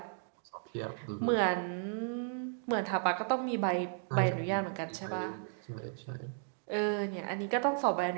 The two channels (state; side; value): silent; left; digital silence